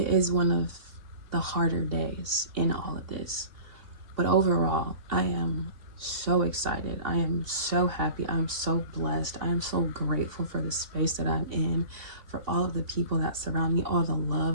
is one of the harder days in all of this. But overall, I am so excited. I am so happy. I'm so blessed. I am so grateful for the space that I'm in, for all of the people that surround me, all the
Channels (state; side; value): late; left; 2.7 ms